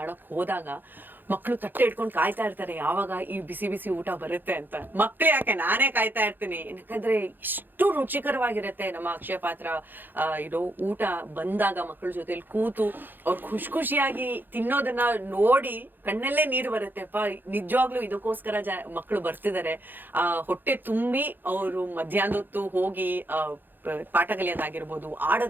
ಹೋದಾಗ ಮಕ್ಕಳು ತಟ್ಟೆ ಇಟ್ಕೊಂಡು ಕಾಯ್ತಾ ಇರ್ತಾರೆ ಯಾವಾಗ ಈ ಬಿಸಿ ಬಿಸಿ ಊಟ ಬರುತ್ತೆ ಅಂತ. ಮಕ್ಳು ಯಾಕೆ, ನಾನೇ ಕಾಯ್ತಾ ಇರ್ತೀನಿ. ಯಾಕಂದ್ರೆ ಇಷ್ಟು ರುಚಿಕರವಾಗಿರುತ್ತೆ ನಮ್ಮ ಅಕ್ಷಯ ಪಾತ್ರ ಊಟ ಬಂದಾಗ ಮಕ್ಕಳ ಜೊತೆಲಿ ಕೂತು ಅವ್ರು ಖುಷಿಯಾಗಿ ತಿನ್ನೋದನ್ನ ನೋಡಿ ಕಣ್ಣಲ್ಲೇ ನೀರು ಬರುತ್ತೆಪ್ಪ. ನಿಜವಾಗ್ಲೂ ಇದಕ್ಕೋಸ್ಕರ ಮಕ್ಕಳು ಬರ್ತಿದ್ದಾರೆ. ಹೊಟ್ಟೆ ತುಂಬಿ ಅವರು ಮಧ್ಯಾಹ್ನದೊತ್ತು ಹೋಗಿ ಪಾಠ ಕಲಿಯೋದಾಗಿರ್ಬೋದು,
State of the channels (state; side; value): late; left; 0.092 ms